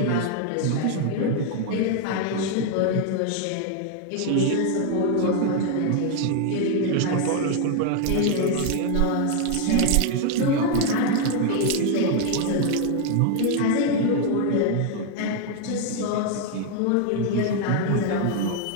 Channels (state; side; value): different; both; correlation 0.00